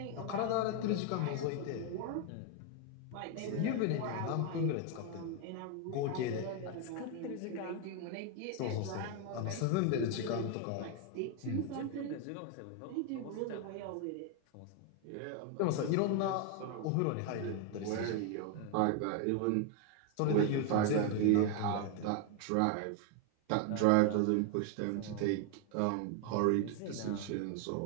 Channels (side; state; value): both; different; correlation 0.01